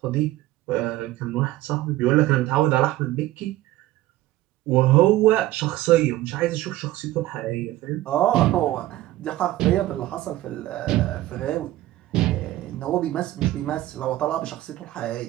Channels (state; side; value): quieter; left; 15.9 dB